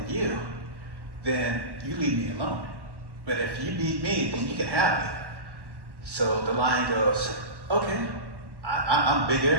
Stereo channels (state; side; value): late; left; 1.1 ms